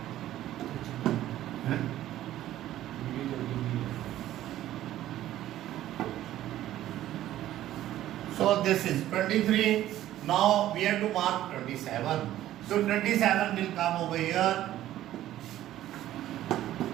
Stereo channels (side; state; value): left; quieter; 13.4 dB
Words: So this is 23. Now we have to mark 27. So 27 will come over here.